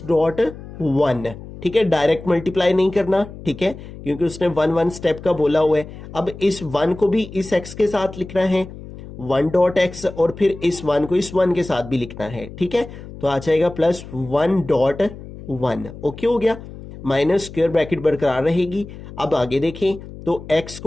डॉट 1, ठीक है, डायरेक्ट मल्टीप्लाई नहीं करना, ठीक है, क्योंकि उसने 1 स्टेप का बोला हुआ है। अब इस 1 को भी इस x के साथ लिखना है, 1 डॉट x, और फिर इस 1 को इस 1 के साथ भी लिखना है, ठीक है, तो आ जाएगा +1 डॉट 1, ओके हो गया। माइनस स्क्वायर ब्रैकेट बरकरार रहेगी। अब आगे देखें, तो x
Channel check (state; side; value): noise; left; hum, 14 dB below the sound